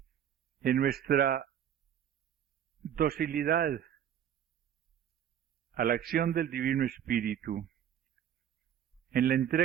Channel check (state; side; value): quieter; left; 9.8 dB